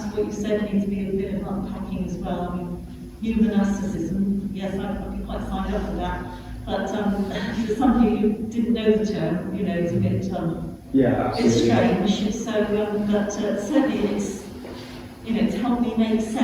what you said needs to be a bit of unpacking as well. I mean, new monasticism, yes, I'd be quite signed up for that, but for somebody who didn't know the term, you know, it's a bit it's strange. So, but certainly it's, you know, it's helped me make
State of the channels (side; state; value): both; identical; correlation 1.00